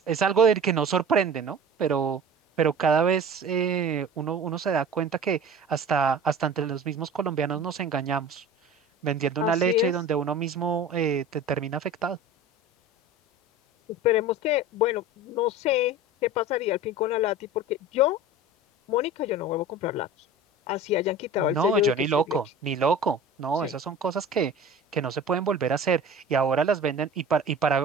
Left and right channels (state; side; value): normal; both; correlation 0.38